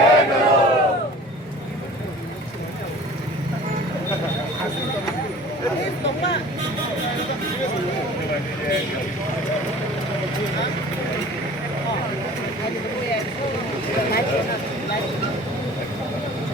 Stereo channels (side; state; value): both; normal; correlation 0.45